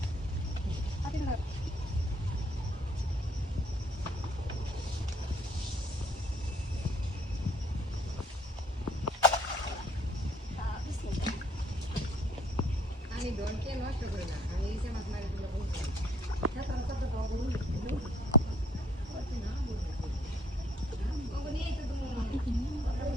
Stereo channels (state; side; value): normal; both; correlation 0.61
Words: আমি ডনকে নষ্ট করি না, আমি এই যে মাছ মারি দিলে বলছি